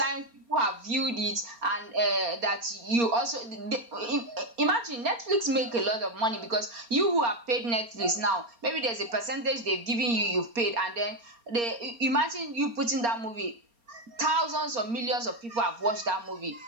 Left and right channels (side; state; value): left; late; 4.3 ms